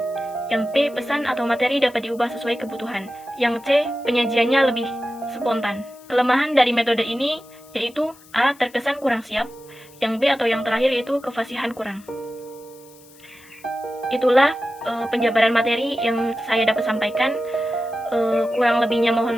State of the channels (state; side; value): noise; left; hiss, 25 dB below the sound